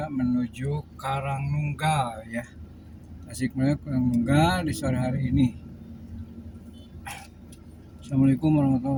menuju Karangnunggal ya. Tasikmalaya Karangnunggal di sore hari ini. Assalamualaikum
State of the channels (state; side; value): identical; both; correlation 1.00